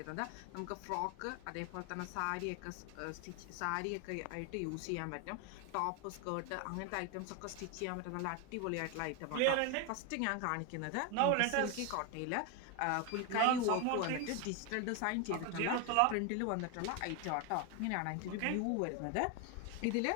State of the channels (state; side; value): different; both; correlation 0.01